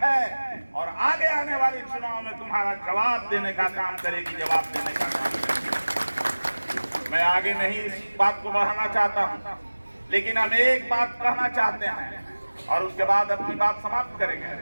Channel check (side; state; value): both; inverted; correlation -1.00